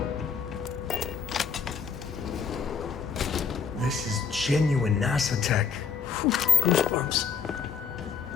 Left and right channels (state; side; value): quieter; right; 6.2 dB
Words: This is genuine NASA tech. Whew, goosebumps.